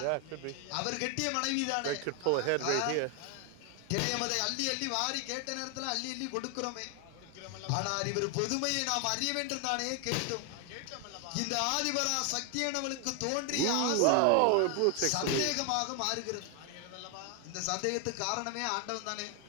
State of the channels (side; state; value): both; different; correlation 0.00